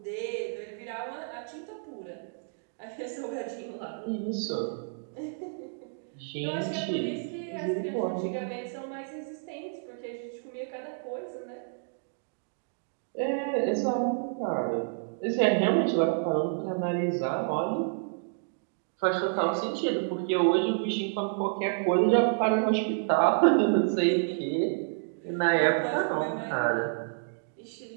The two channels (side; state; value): left; silent; digital silence